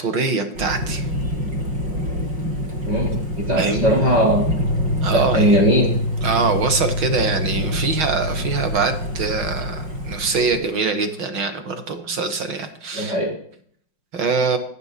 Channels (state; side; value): late; left; 6.3 ms